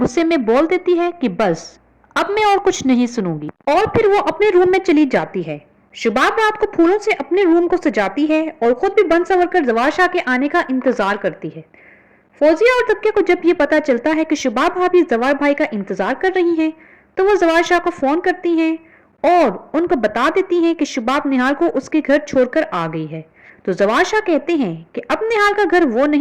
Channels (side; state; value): both; identical; correlation 1.00